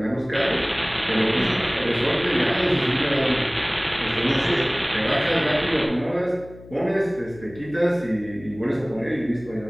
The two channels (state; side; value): noise; left; hum, 19 dB below the sound